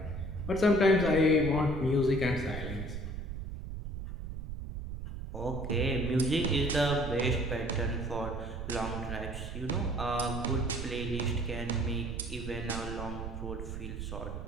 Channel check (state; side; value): noise; right; rumble, 6 dB below the sound